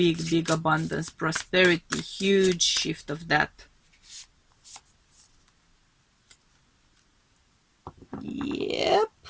abundance, prosperity, huge shift of that. Yep.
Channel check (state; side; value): identical; both; correlation 1.00